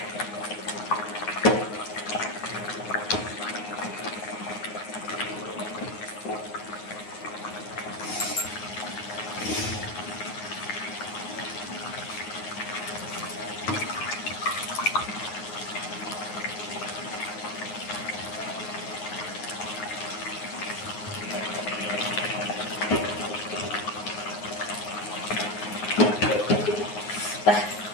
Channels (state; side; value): late; right; 9.5 ms